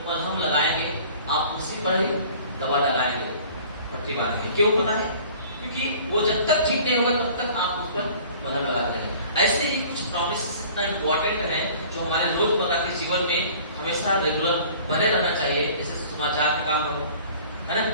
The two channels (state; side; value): inverted; both; correlation -0.48